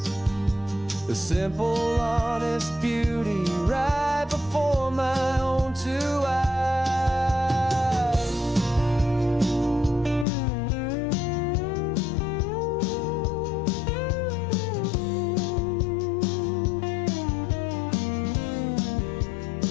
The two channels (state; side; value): drops out; right; at 10.2 s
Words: the simple, honest beauty right before my own two eyes.